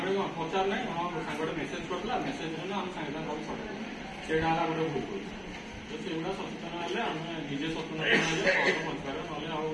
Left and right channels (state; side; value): identical; both; correlation 1.00